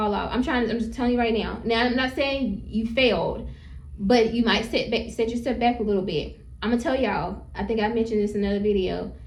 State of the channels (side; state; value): both; identical; correlation 1.00